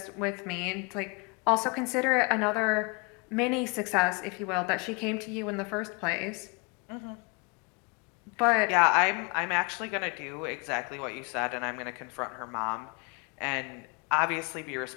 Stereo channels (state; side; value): quieter; right; 31.5 dB